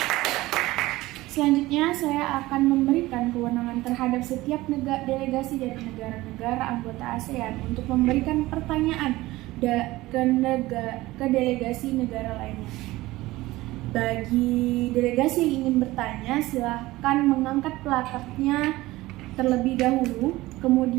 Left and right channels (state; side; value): quieter; left; 18.5 dB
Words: Selanjutnya saya akan memberikan kewenangan terhadap setiap delegasi dari negara-negara anggota ASEAN untuk memberikan pertanyaan ke delegasi negara lainnya. Bagi delegasi yang ingin bertanya, silahkan mengangkat plakatnya terlebih dahulu,